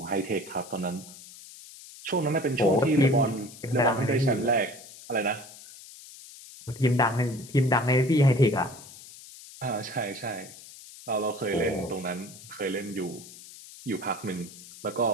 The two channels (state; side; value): noise; left; hiss, 18 dB below the sound